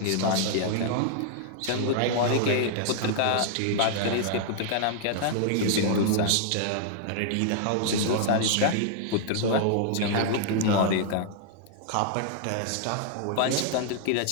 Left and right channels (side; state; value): both; different; correlation -0.01